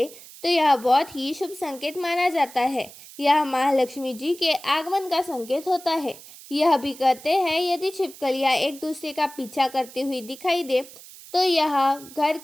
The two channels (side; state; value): right; noise; hiss, 18 dB below the sound